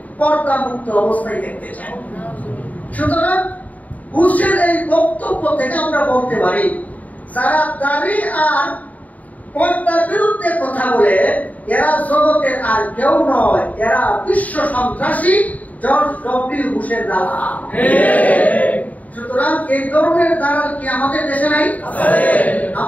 পর্দা মুক্ত অবস্থায় দেখতে চাই। সুতরাং বুশের এই বক্তব্য থেকে আমরা বলতে পারি, যারা দাড়ি আর পর্দার বিরুদ্ধে কথা বলে এরা জগতের আর কেউ নয়, এরা বিশ্ব সন্ত্রাসী জর্জ ডব্লিউ বুশের দালাল। সুতরাং এই ধরনের দালাল কি আমাদের দেশে নাই?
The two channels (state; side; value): late; right; 0.073 ms